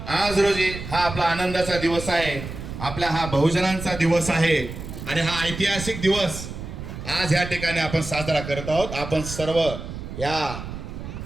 आज रोजी हा आपला आनंदाचा दिवस आहे, आपला हा बहुजनांचा दिवस आहे आणि हा ऐतिहासिक दिवस आज या ठिकाणी आपण साजरा करत आहोत. आपण सर्व या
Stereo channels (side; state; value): right; noise; rumble, 9 dB below the sound